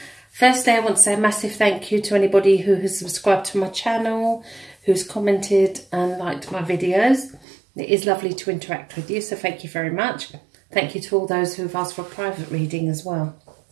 Firstly, I want to say a massive thank you to anybody who has subscribed to my channel, who's commented and liked my videos. It is lovely to interact with you, so thank you very much. Thank you to all those who have asked for a private reading as well.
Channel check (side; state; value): left; drops out; at 7.5 s